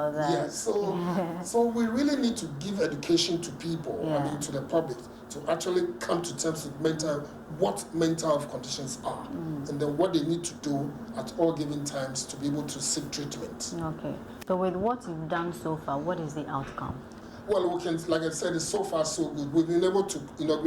that. So we really need to give education to people, to the public, to actually come to terms with what mental health conditions are, and then what they need to do at all given times to be able to seek treatment. So with what you've done so far, what is the outcome? Well, we can, like I said, it's so far so good. We've been able to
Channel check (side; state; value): both; identical; correlation 1.00